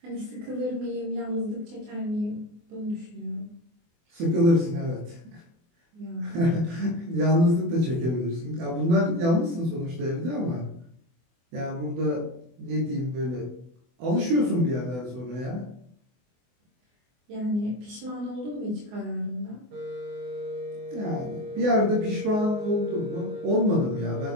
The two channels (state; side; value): late; left; 24 ms